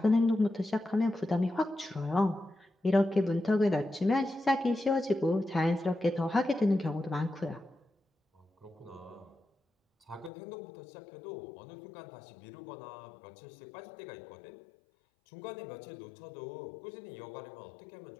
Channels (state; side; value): drops out; right; at 10.3 s